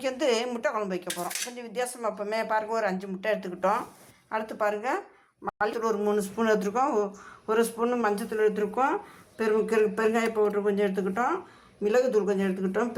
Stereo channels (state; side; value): identical; both; correlation 1.00